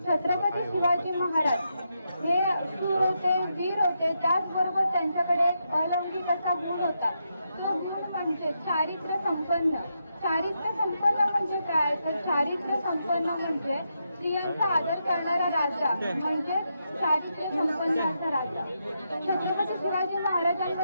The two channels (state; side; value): inverted; both; correlation -0.83